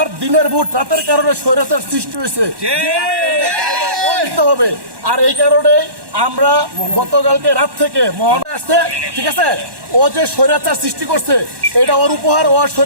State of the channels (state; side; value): late; left; 1.1 ms